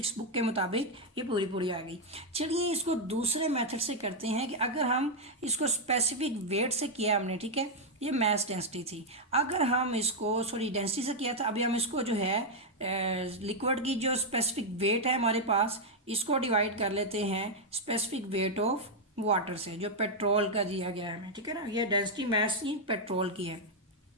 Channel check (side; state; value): both; normal; correlation -0.01